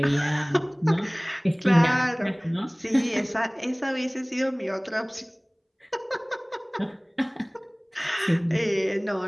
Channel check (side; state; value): both; identical; correlation 1.00